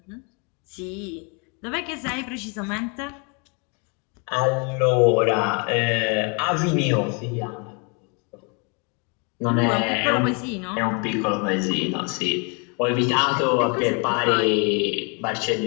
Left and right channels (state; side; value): quieter; right; 34.1 dB